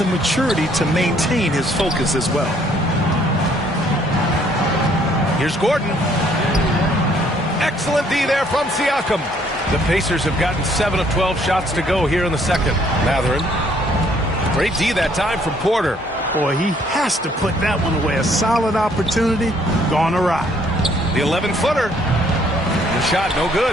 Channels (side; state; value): both; normal; correlation 0.64